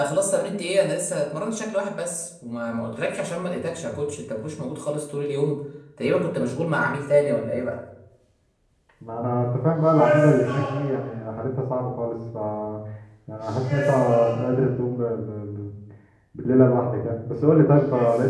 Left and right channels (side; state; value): both; identical; correlation 1.00